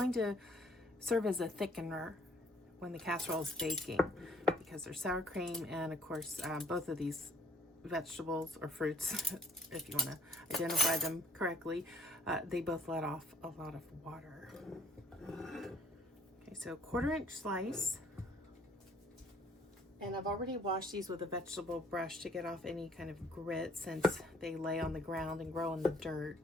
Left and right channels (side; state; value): both; normal; correlation 0.61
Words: to serve as a thickener when the casserole is baking, because there's sour cream and, of course, both of these vegetables or fruits, if you want to identify them correctly, they both let off a lot of water. Okay, so 1/4 inch slice. And I've already washed these with a vegetable brush to get off any kind of grit, since they lay on the ground and grow in the dirt.